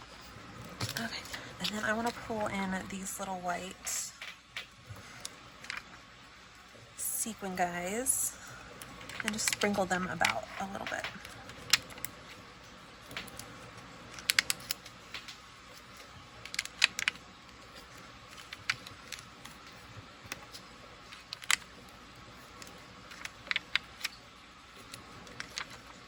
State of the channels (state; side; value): identical; both; correlation 1.00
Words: Okay, and then I want to pull in these little white sequin guys and just sprinkle them about a little bit.